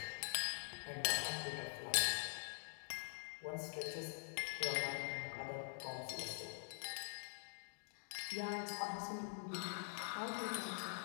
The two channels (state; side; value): silent; right; digital silence